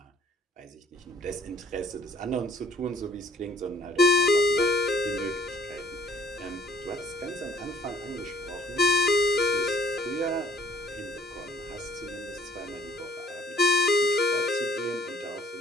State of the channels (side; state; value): both; normal; correlation 0.58